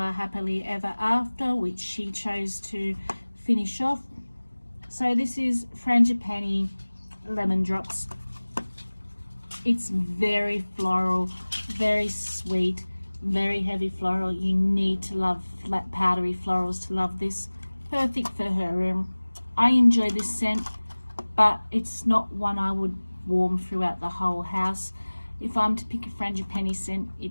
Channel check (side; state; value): both; inverted; correlation -1.00